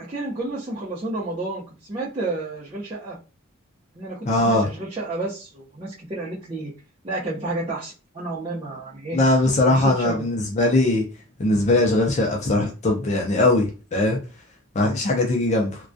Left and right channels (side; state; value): both; normal; correlation 0.33